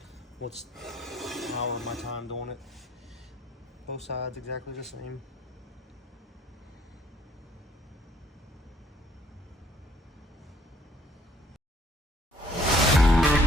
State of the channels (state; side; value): normal; both; correlation 0.62